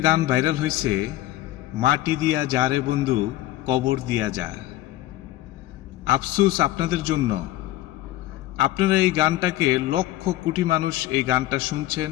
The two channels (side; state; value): right; quieter; 15.5 dB